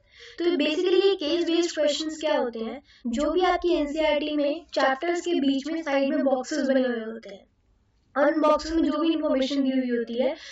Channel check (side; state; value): both; identical; correlation 1.00